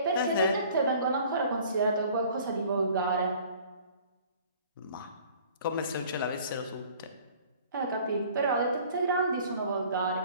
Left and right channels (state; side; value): inverted; both; correlation -0.51